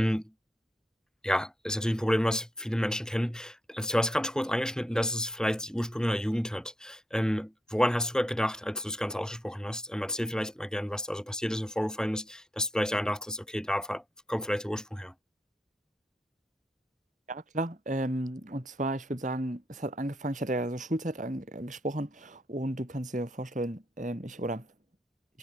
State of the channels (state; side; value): normal; both; correlation 0.81